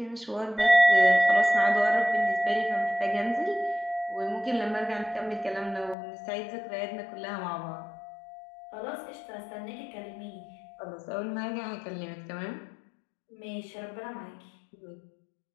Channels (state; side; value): drops out; right; at 6.0 s